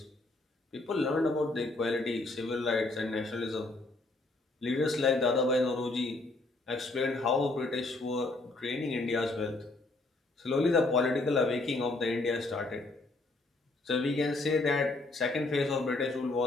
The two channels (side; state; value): right; quieter; 3.0 dB